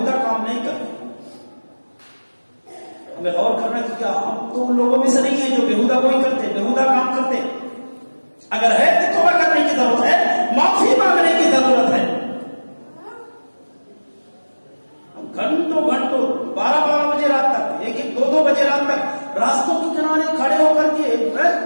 کام نہیں کرتے۔ ہمیں غور کرنا کہ کیا ہم تو ان لوگوں میں سے نہیں ہیں جو بیہودہ کوئی کرتے، بیہودہ کام کرتے؟ اگر ہے تو توبہ کرنے کی ضرورت ہے، معافی مانگنے کی ضرورت ہے۔ ہم گھنٹوں 12 بجے رات تک، 1-2 بجے رات تک راستوں کے کنارے کھڑے ہو کر کے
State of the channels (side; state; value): both; inverted; correlation -1.00